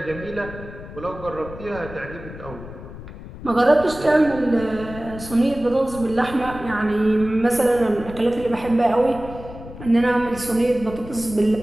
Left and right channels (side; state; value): left; noise; rumble, 14 dB below the sound